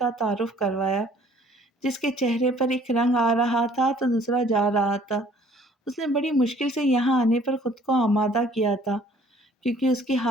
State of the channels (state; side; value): normal; both; correlation 0.57